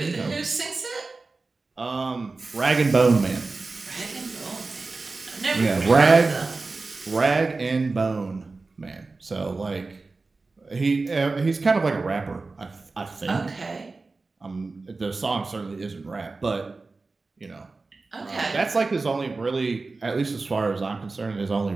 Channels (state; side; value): quieter; left; 3.7 dB